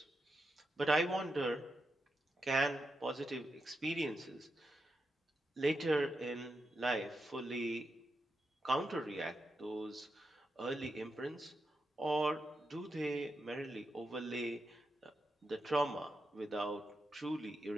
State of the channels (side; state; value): both; normal; correlation 0.86